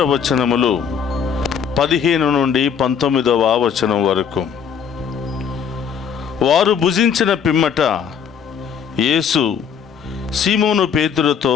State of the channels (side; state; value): right; quieter; 7.3 dB